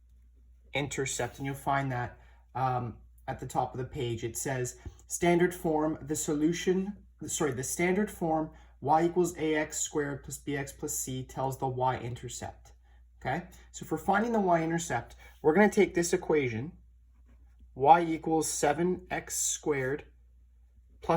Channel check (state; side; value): identical; both; correlation 1.00